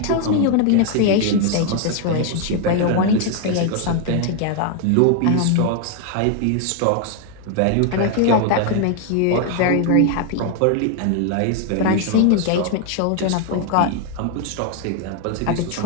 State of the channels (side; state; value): both; different; correlation 0.01